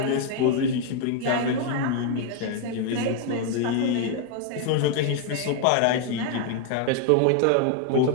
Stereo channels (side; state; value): both; different; correlation 0.00